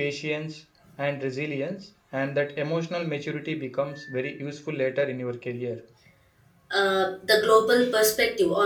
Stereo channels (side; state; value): both; identical; correlation 1.00